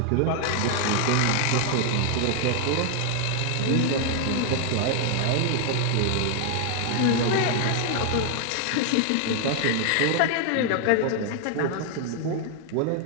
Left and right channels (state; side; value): different; both; correlation 0.00